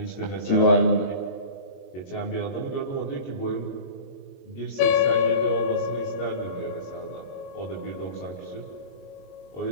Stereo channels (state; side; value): late; right; 22 ms